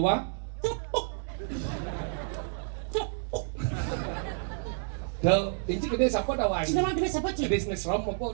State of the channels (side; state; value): left; silent; 58 dB below the other